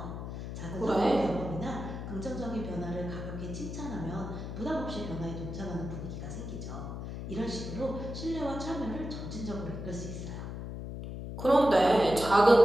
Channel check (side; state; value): left; noise; hum, 7 dB below the sound